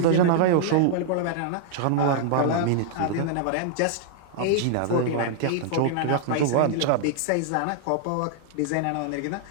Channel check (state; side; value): different; both; correlation -0.01